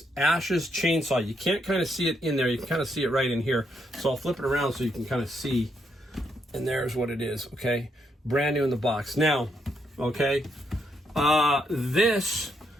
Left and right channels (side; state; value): both; normal; correlation 0.77